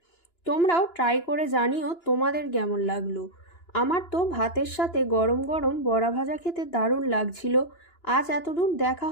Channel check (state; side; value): late; right; 2.9 ms